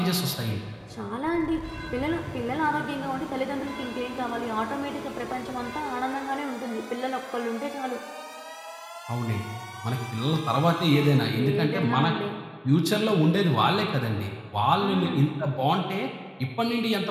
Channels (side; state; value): both; identical; correlation 1.00